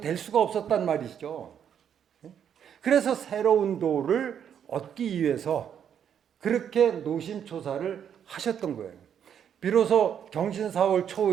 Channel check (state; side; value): quieter; left; 8.6 dB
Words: 될 수가 없었단 말이죠. 그래서 새로운 도를 얻기 위해서 그렇게 노심초사를 하셨던 거예요. 비로소 경신 4월